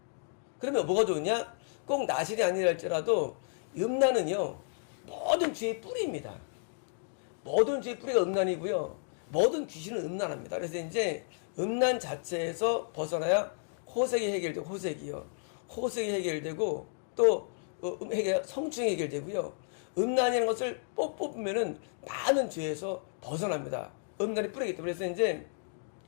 그러면 뭐가 좋으냐? 꼭 나신이 아니라 할지라도 음란은요 모든 죄의 뿌리입니다. 모든 죄의 뿌리가 음란이고요. 모든 귀신은 음란합니다. 그래서 이제 음란 자체에서 벗어나야 호색이 해결되고 호색이 해결되고 또 성충이 해결되고요. 음란이라는 것을 뽑으면은 많은 죄에서 벗어납니다. 음란이 뿌리기 때문에. 그래서 이제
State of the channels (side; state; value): right; silent; digital silence